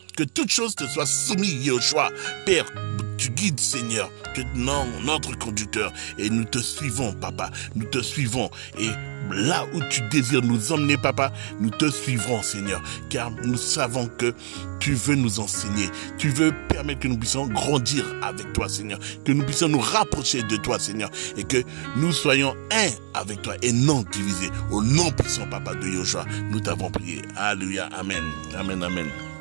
que toute chose te soit soumise, Yoshua. Père, tu guides, Seigneur, que notre conducteur, et nous te suivons, Papa, nous te suivons, et là où tu désires nous emmener, Papa, nous te suivrons, Seigneur, car nous savons que tu veux nous enseigner, tu veux permettre que nous puissions grandir avec toi, Seigneur, que nous puissions nous rapprocher de toi, Seigneur, et que nous soyons un avec toi et non divisés. Au nom puissant, Papa, de Yoshua, nous t'avons prié. Alléluia, amen, amen, amen.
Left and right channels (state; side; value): silent; left; digital silence